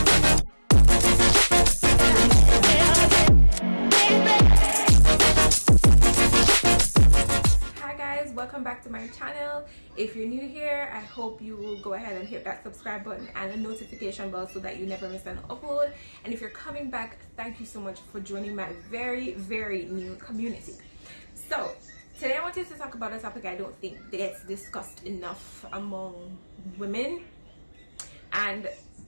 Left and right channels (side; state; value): both; inverted; correlation -1.00